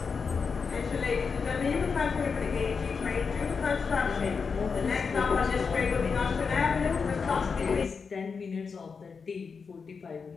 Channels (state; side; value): quieter; right; 5.4 dB